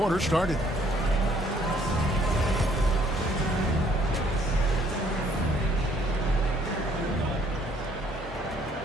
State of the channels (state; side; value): normal; both; correlation 0.64